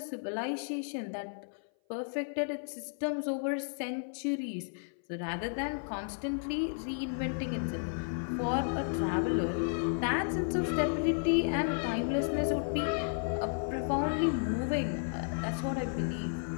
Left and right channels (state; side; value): silent; right; 56 dB below the other